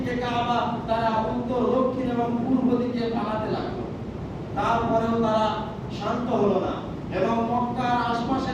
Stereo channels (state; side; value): identical; both; correlation 1.00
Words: কাবা, তারা উত্তর, দক্ষিণ এবং পূর্ব দিকে পালাতে লাগলো। তারপরেও তারা শান্ত হলো না এবং মক্কার আশপাশে